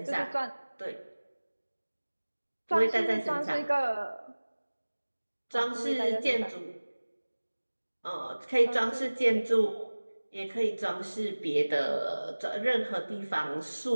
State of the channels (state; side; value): inverted; both; correlation -1.00